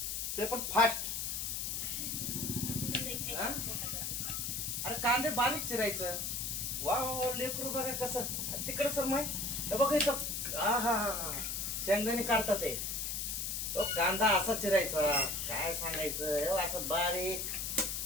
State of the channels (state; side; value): noise; left; hiss, 2 dB below the sound